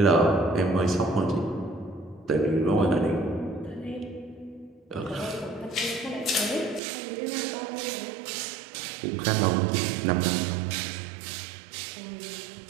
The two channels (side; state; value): left; drops out; at 6.8 s